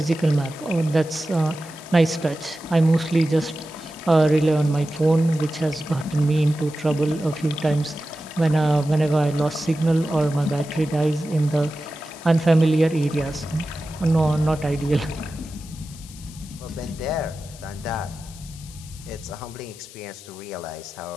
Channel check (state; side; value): noise; left; hiss, 19 dB below the sound